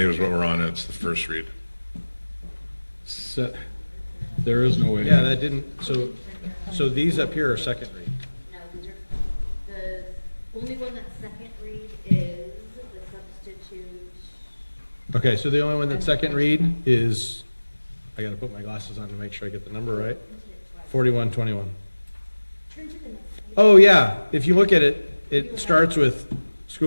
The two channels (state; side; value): inverted; both; correlation -1.00